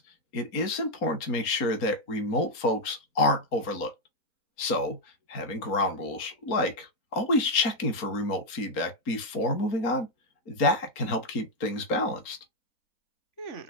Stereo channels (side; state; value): right; late; 4.3 ms